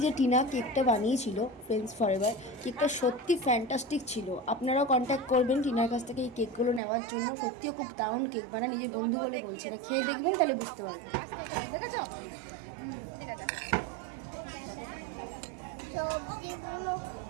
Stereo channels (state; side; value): drops out; left; at 6.8 s